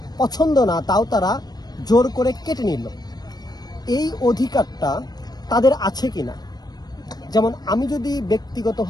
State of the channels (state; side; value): late; right; 0.19 ms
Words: পছন্দ না, তাও তারা জোর করে কেটে নিল। এই অধিকারটা তাদের আছে কিনা? যেমন আমি যদি